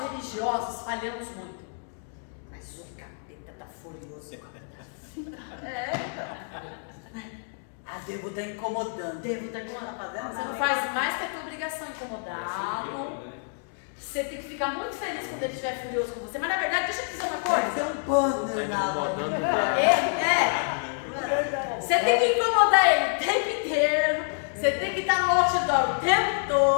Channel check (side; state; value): right; silent; 60 dB below the other